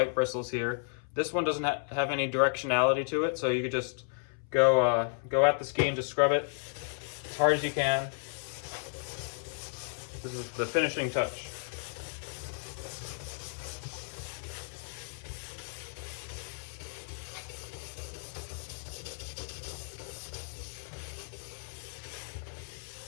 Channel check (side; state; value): right; silent; 55 dB below the other